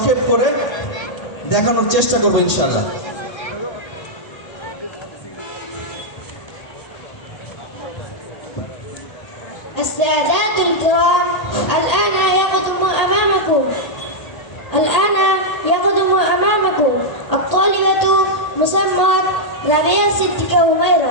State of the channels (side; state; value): right; late; 1.8 ms